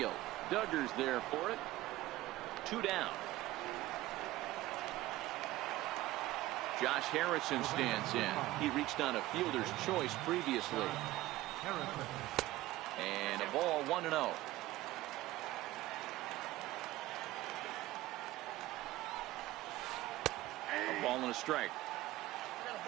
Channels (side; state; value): left; quieter; 16.9 dB